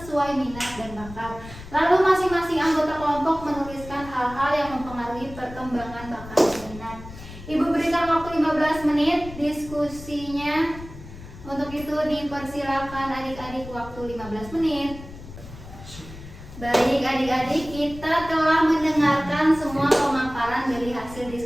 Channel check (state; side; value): noise; left; rumble, 15 dB below the sound